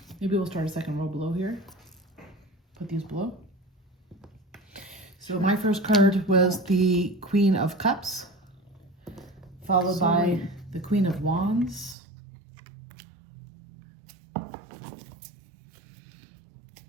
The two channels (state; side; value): drops out; left; at 12.0 s